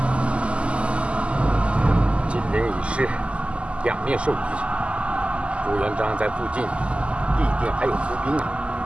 金陵已失，两面受敌，朱元璋在附近必定还有伏兵啊！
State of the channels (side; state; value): left; late; 0.056 ms